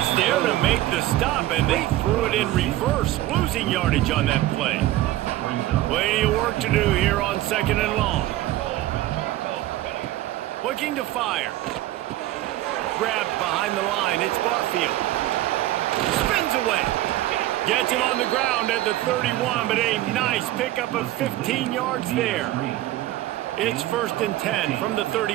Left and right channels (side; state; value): left; quieter; 15.3 dB